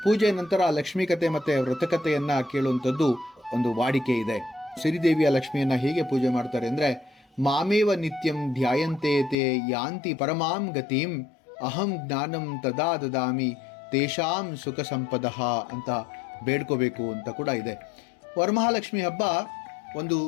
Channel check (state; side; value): drops out; right; at 9.3 s